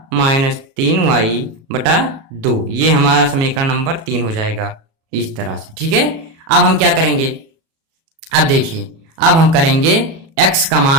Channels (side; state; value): left; late; 37 ms